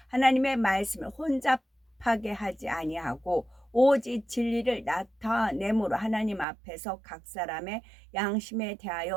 하나님의 말씀을 혼잡하게 하지 아니하고 오직 진리를 나타내므로 하나님 앞에서 각 사람의 양심에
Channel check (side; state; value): left; drops out; at 6.5 s